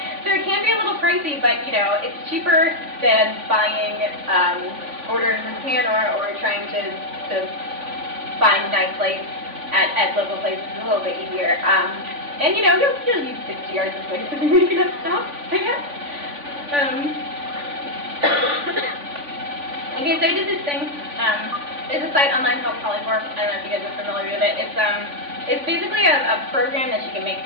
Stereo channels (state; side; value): late; left; 3.5 ms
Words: So it can be a little pricey, but, you know, it's cheaper than buying orders in Japan or trying to find nice lace at local places. It's a little bit easier. And, you know, you'll use 60 yards of lace if you're making up stuff, I guess. Okay, so I did this thing. There's a site online called Polyform. I don't know if you guys are familiar with it. It's basically a program that you can make